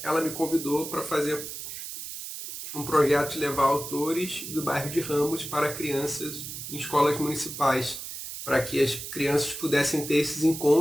ela me convidou para fazer um projeto de levar autores do bairro de Ramos para crianças em escolas municipais, para que as crianças pudessem ter esses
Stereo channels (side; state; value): right; noise; hiss, 8 dB below the sound